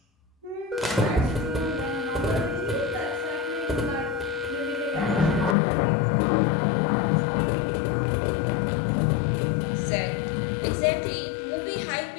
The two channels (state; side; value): drops out; right; at 5.6 s